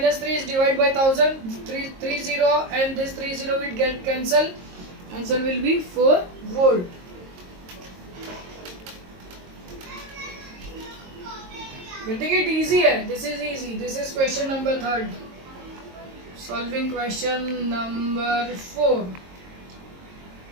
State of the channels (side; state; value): left; late; 22 ms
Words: 3 is divided by 1000. 30 and this 30 will get cancelled. Answer will be 4 volt. Getting it easy hai? This is easy. This is question number 3. Solving question number 4.